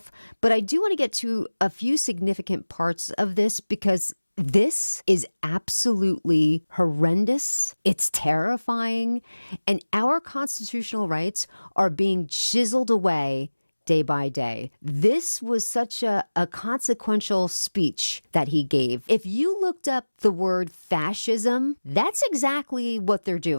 but I do want to get to a few significant parts of this because this is absolutely horrendous. It's terrifying, and our constitutional rights are being chiseled away day by day. This was such a consequential speech that he gave. If you looked up the word fascism, that's exactly what they're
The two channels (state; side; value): inverted; both; correlation -1.00